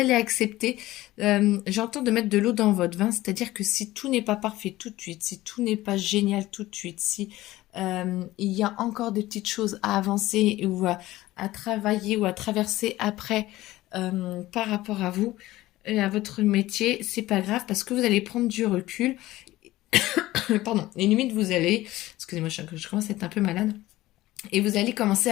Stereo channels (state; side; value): quieter; right; 16.9 dB